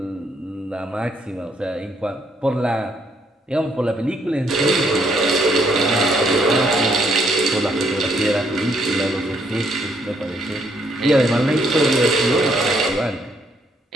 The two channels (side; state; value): both; normal; correlation 0.70